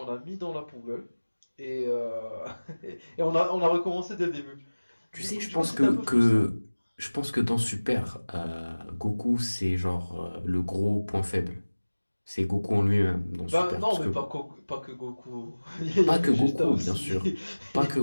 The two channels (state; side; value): inverted; both; correlation -1.00